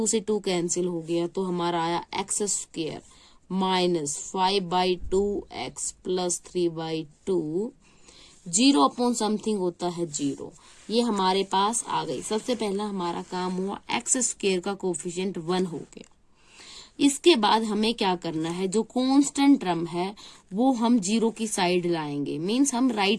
से 2 कैंसिल हो गया, तो हमारा आया x² - 5/2x + 3/2, 0 अपॉन समथिंग होता है 0। ये हमारे पास आ गई। सबसे पहला हमारा काम हुआ, x² का कोफिशिएंट 1 हो गया। इसके बाद हमें क्या करना है, जो कांस्टेंट टर्म है वो हम 0 की साइड लाएंगे, मींस हम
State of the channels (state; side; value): identical; both; correlation 1.00